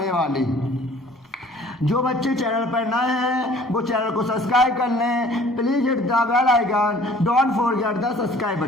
वाली। जो बच्चे चैनल पर नए हैं वो चैनल को सब्सक्राइब कर लें, please hit the bell icon, don't forget the subscribe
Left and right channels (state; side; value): normal; both; correlation 0.52